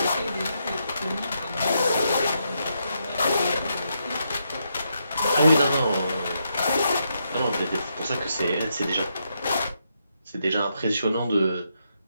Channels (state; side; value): inverted; both; correlation -0.80